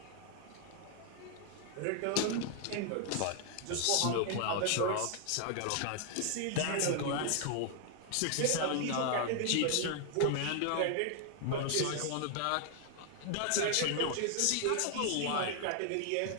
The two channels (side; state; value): both; different; correlation 0.00